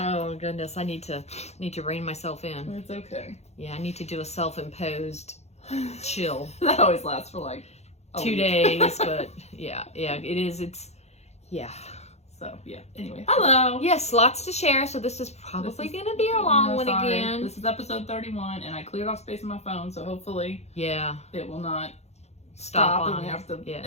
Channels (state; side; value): late; right; 0.31 ms